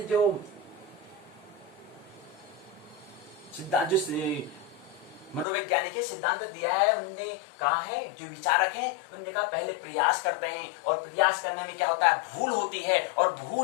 जो मनोवैज्ञानिक है, सिद्धांत दिया है, उनने कहा है, जो विचारक हैं उन्होंने कहा पहले प्रयास करते हैं, और प्रयास करने में क्या होता है, भूल होती है, और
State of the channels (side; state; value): right; drops out; at 5.5 s